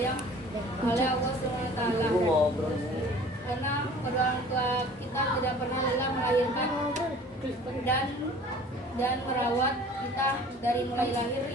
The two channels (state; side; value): normal; both; correlation 0.47